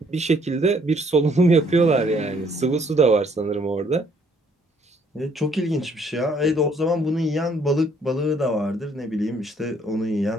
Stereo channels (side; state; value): both; normal; correlation 0.64